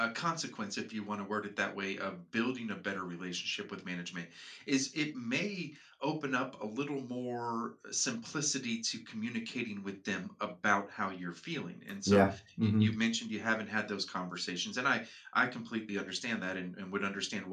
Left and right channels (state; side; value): identical; both; correlation 1.00